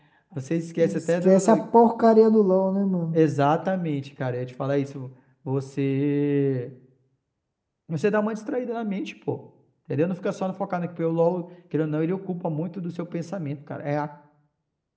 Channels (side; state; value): both; identical; correlation 1.00